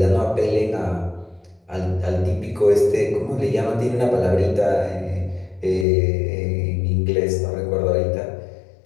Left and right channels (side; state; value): right; drops out; at 5.9 s